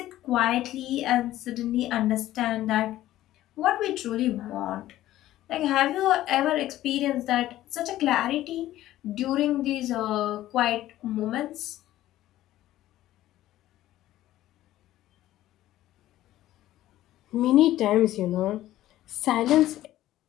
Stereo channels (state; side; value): quieter; right; 14.4 dB